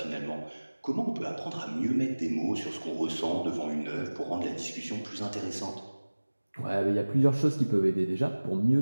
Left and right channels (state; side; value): inverted; both; correlation -1.00